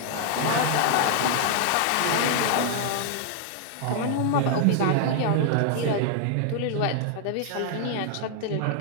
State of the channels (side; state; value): both; different; correlation 0.00